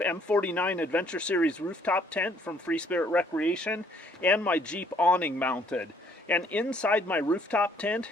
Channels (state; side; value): normal; both; correlation 0.63